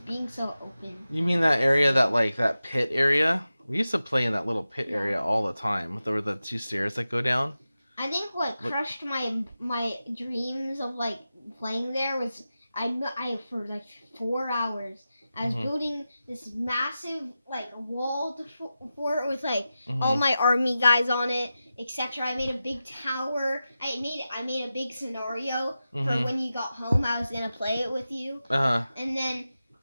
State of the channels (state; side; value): inverted; both; correlation -0.93